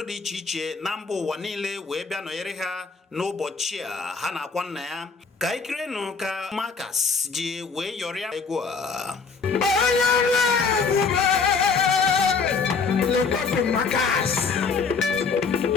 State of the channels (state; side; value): quieter; right; 5.0 dB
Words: dị iche iche na mba ụwa niile wee bịa nọnyere ha n'ụbọchị a ha na-akwa nna ya. Ka ikirenụ ka Marcus ji wee yọrịa egwu a. Le pape Marcus,